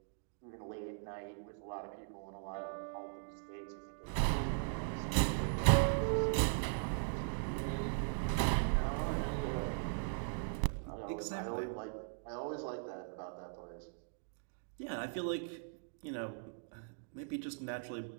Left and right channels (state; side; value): silent; left; digital silence